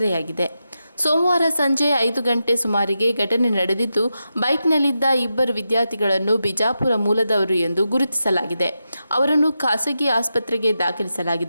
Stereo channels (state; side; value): inverted; both; correlation -0.88